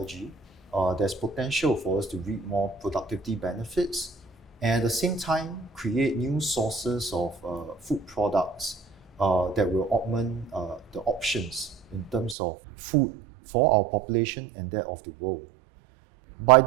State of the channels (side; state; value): left; drops out; at 12.4 s